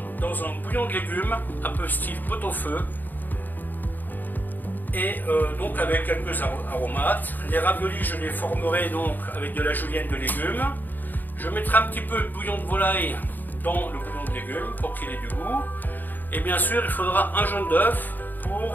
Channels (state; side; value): late; right; 0.088 ms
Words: dans un bouillon de légumes un peu style pot-au-feu et donc avec quelques aromates. Les raviolis je les formerai donc avec de la julienne de légumes. Je mettrai un petit peu de bouillon de volaille dans le bouillon de légumes pour qu'il ait du goût. Et bien sûr, il faudra un jaune d'œuf